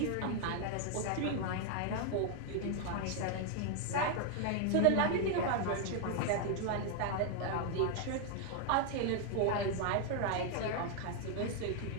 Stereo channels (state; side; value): different; both; correlation 0.00